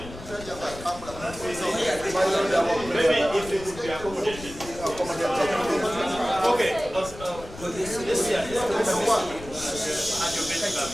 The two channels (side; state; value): left; noise; rumble, 15 dB below the sound